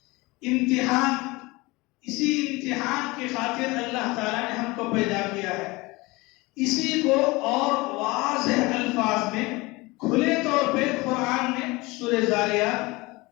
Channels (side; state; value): right; quieter; 23.0 dB